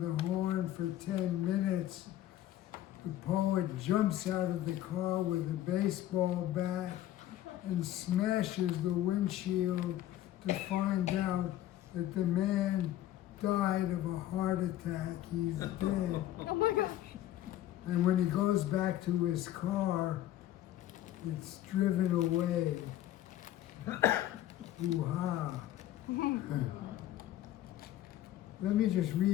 horn for 10 minutes. The poet jumps out of the car with a baseball bat and smashes the windshield to find out that the man died of a heart attack. He's dead. Oh my gosh. And when he goes back to his car, it's driven away. Hoo-ha. Let me just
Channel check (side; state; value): right; quieter; 13.1 dB